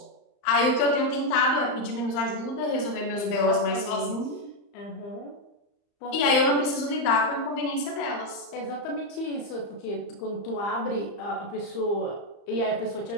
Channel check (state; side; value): late; right; 35 ms